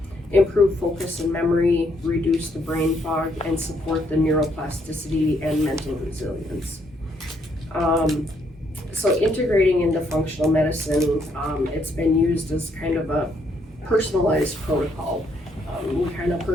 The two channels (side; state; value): both; normal; correlation 0.72